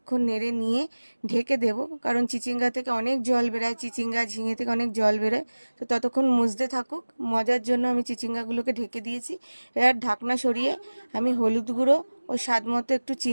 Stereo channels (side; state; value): both; inverted; correlation -1.00